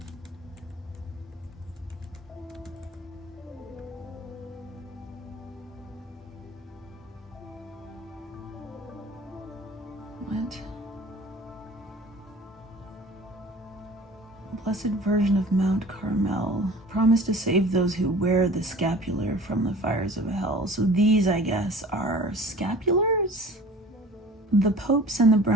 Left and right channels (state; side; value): normal; both; correlation 0.44